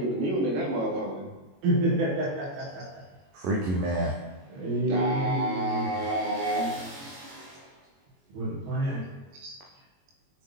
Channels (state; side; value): late; left; 22 ms